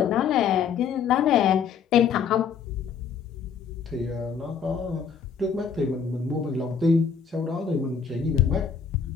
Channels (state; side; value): quieter; right; 6.6 dB